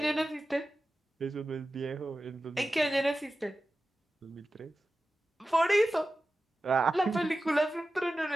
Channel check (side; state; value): both; normal; correlation 0.94